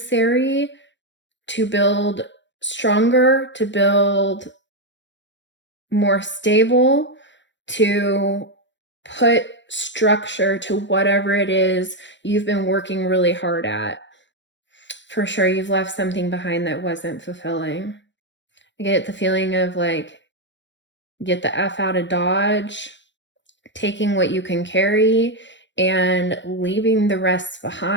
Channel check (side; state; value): right; late; 0.53 ms